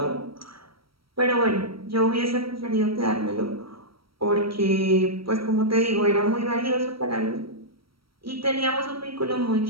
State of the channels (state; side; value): late; left; 0.75 ms